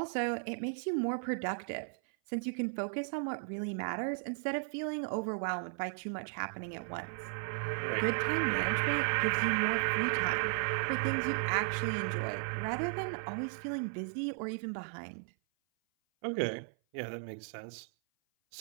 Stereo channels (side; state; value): left; silent; 54 dB below the other